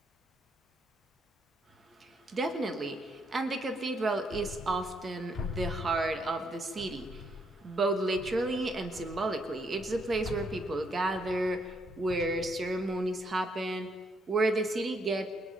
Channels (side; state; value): both; normal; correlation 0.74